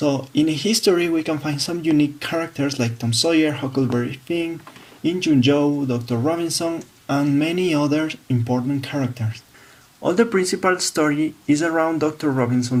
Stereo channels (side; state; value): both; identical; correlation 1.00